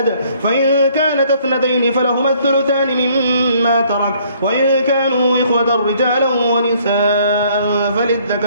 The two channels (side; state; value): both; inverted; correlation -0.62